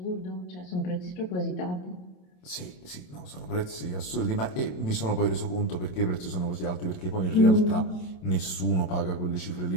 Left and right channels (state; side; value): late; right; 27 ms